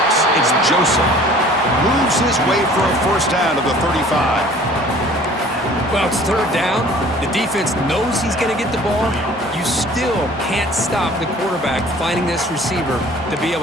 It's Joseph. Moves his way for a first down to the 35. Well, it's 3rd down. The defense knows he's going to get the ball. You still can't stop the quarterback finding this receiver to be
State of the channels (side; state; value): both; normal; correlation 0.50